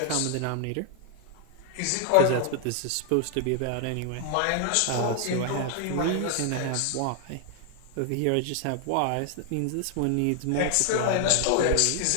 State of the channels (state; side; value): different; both; correlation 0.00